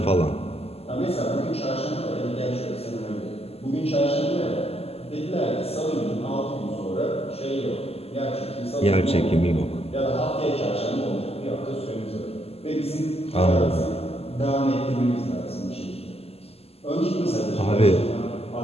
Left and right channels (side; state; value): right; late; 0.29 ms